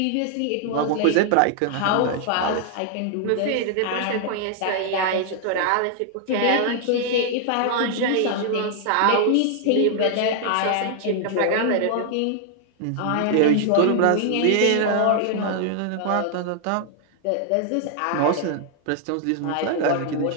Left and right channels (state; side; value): different; both; correlation 0.00